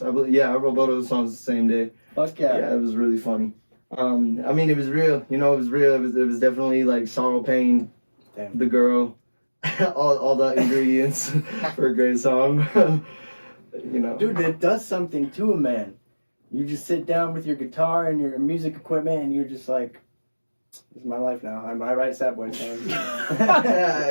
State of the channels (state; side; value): inverted; both; correlation -1.00